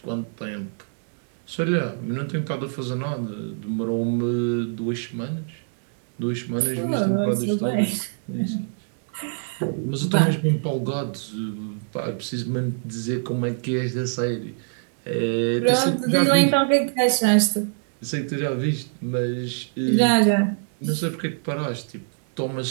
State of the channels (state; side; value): silent; left; digital silence